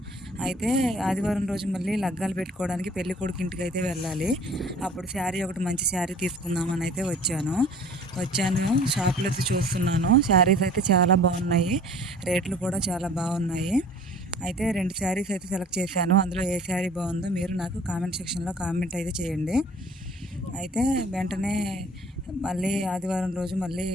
అయితే ఆదివారం రోజు మళ్ళీ లగ్గాలు పెట్టుకోవడానికి పెళ్లి కొడుకు ఇంటికి అయితే వెళ్ళాలి. అప్పుడు శారీ ఒకటి మంచి శారీ తీసుకుందామని అయితే వచ్చాను. షాప్లో అయితే చూస్తున్నాను. శారీస్ అయితే చాలా బాగున్నాయి. రేట్లు కూడా చాలా బాగున్నాయి. అయితే 2 శారీస్ అయితే సెలెక్ట్ చేశాను. అందులో ఏ శారీ బాగుందో మీరు నాకు కామెంట్ సెక్షన్లో కామెంట్ అయితే చేయండి. అయితే వెంటనే మళ్ళీ ఆదివారం రోజు మళ్ళీ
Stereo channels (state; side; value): normal; both; correlation 0.48